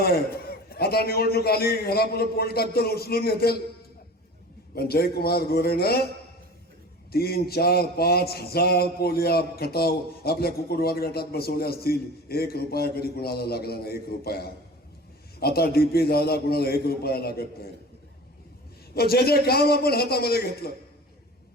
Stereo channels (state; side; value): normal; both; correlation 0.38